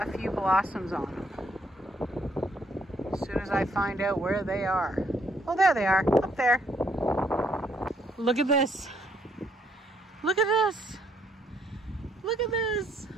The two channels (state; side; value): normal; both; correlation 0.70